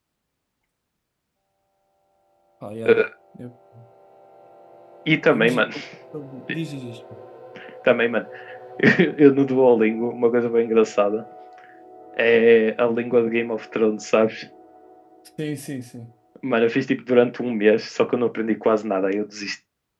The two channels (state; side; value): identical; both; correlation 1.00